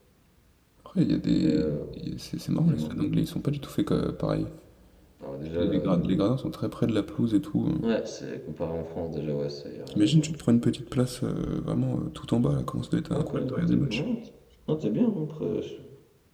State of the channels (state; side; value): identical; both; correlation 1.00